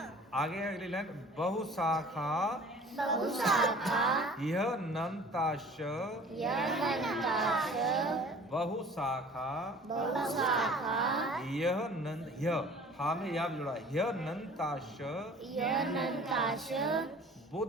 आगे अगली लाइन, बहुशाखा यह नंताश, बहुशाखा यह नंद, यह हा में या जुड़ा, यह नंताश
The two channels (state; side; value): normal; both; correlation 0.47